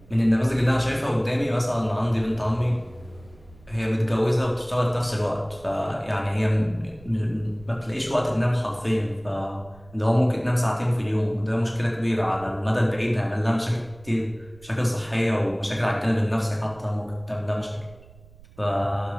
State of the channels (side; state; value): right; noise; rumble, 23 dB below the sound